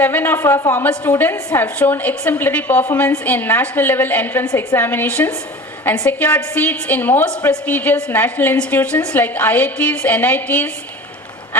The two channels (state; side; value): normal; both; correlation 0.38